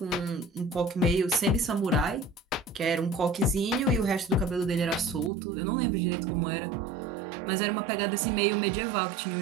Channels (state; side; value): drops out; left; at 5.3 s